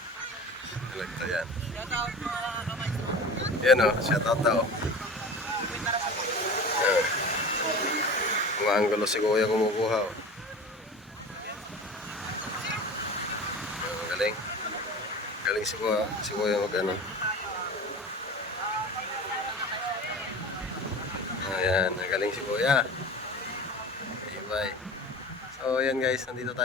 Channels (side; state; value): both; normal; correlation 0.36